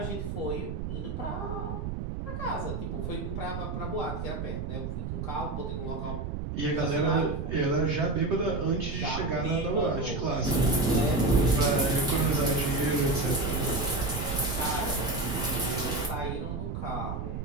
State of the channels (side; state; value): right; noise; rumble, 4 dB below the sound